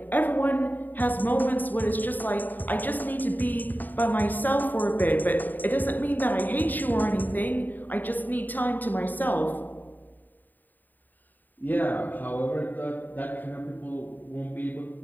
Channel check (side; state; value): right; late; 0.088 ms